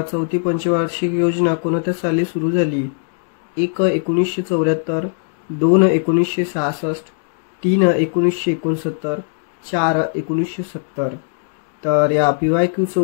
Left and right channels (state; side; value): silent; right; 66 dB below the other